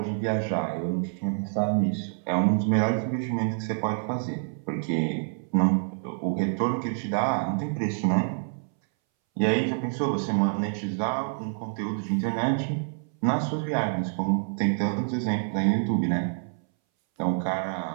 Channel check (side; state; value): left; silent; 60 dB below the other